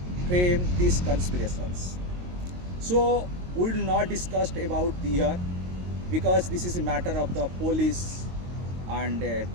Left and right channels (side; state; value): left; late; 22 ms